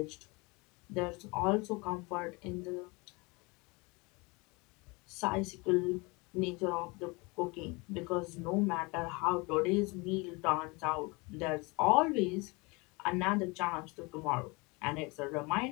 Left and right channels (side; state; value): right; quieter; 26.9 dB